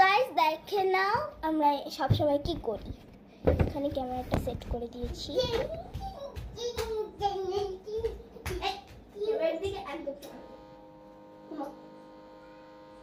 গাইস দেখে নাও আমরা সবসময় কি করি। এখানে ক্যামেরাটা সেট করে দিয়েছি।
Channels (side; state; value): both; identical; correlation 1.00